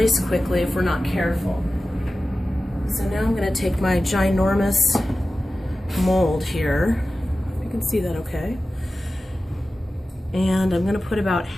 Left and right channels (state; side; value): normal; both; correlation 0.95